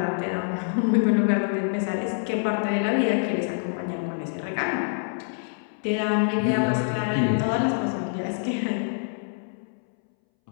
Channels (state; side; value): silent; right; 61 dB below the other